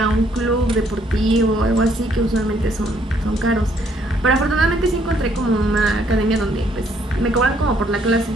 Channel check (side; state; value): both; normal; correlation 0.67